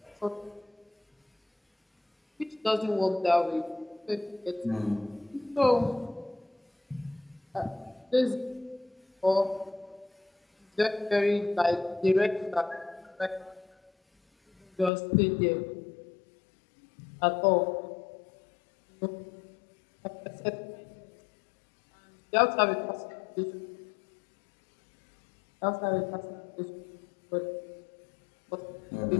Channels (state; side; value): drops out; right; at 14.9 s